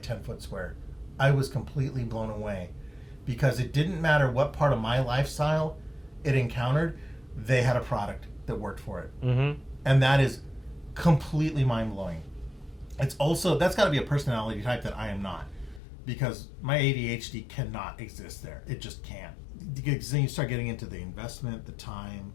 foot square. I was completely blown away. Because it didn't matter what part of my lifestyle it encountered, they had a product that worked for it. And that is completely mind-blowing. It's also, that's got to be a personality type that I am not. Because my ADHD cannot exist there. It just can't. Because then you start getting into the investment, the time,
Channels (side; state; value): right; drops out; at 15.8 s